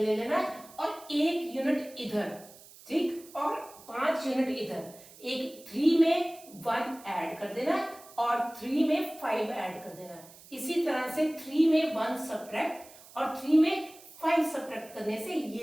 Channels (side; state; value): right; noise; hiss, 21 dB below the sound